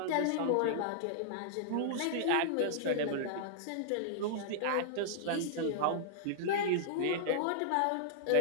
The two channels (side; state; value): both; different; correlation -0.01